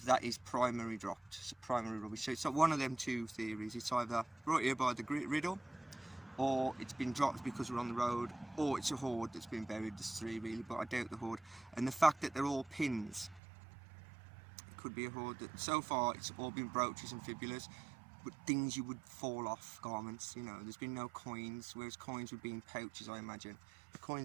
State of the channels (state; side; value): drops out; left; at 13.4 s